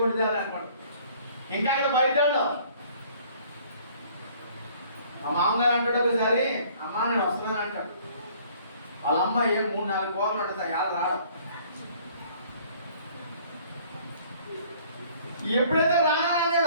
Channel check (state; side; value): inverted; both; correlation -0.56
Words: కొండిదాన్ని అనుకోండి. ఇంకా ఇక్కడ బయట మా మామగారు అంటాడు ఒకసారి, అమ్మ నేను వస్తున్నాను అంటాడు. వాళ్ళ అమ్మ ఏం 3-4 కోర్లు ఉంటుంది, ఎలా రాడు. ఎప్పుడైతే